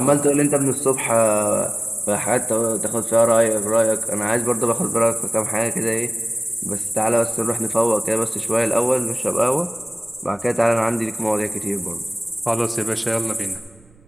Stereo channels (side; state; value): right; noise; rumble, 29 dB below the sound